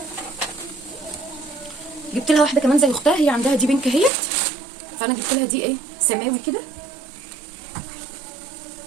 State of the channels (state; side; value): drops out; left; at 4.1 s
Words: جبت لها واحده كمان زي اختها، هي عندها دي بينك اهيت، فانا جبت لها دي ايه سماوي كده.